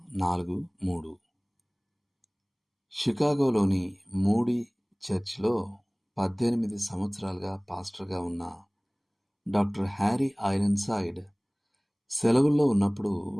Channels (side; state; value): both; identical; correlation 1.00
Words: 4:3. షికాగోలోని మూడీ చర్చ్లో 18 సంవత్సరాలుగా పాస్టర్గా ఉన్న డాక్టర్ హ్యారీ ఐరన్సైడ్ సెలవుల్లో ఉన్నప్పుడు